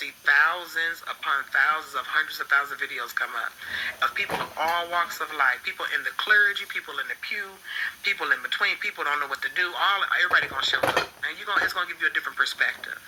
thousands upon thousands of hundreds of thousands of videos come up of people of all walks of life, people in the clergy, people in the pew, people in between, people don't know what to do, everybody going to show up, and it's going to give you a different perspective.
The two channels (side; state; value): both; identical; correlation 1.00